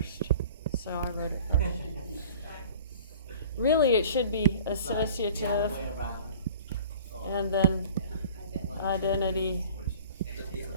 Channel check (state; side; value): inverted; both; correlation -0.46